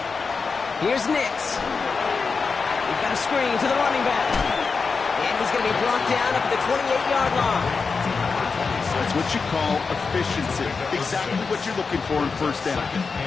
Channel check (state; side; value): quieter; right; 4.8 dB